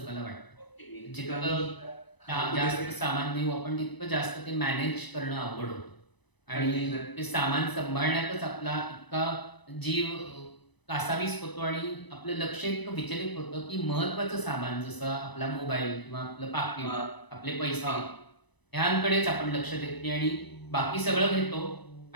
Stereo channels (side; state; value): right; late; 1.0 ms